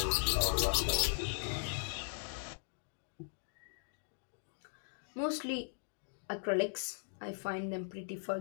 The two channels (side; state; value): right; silent; digital silence